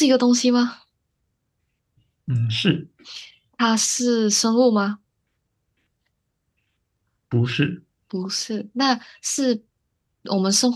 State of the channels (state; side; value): identical; both; correlation 1.00